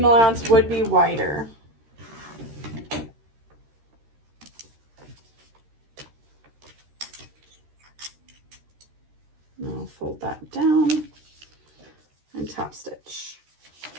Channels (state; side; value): late; left; 13 ms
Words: allowance would be wider. I'll fold that down and top stitch.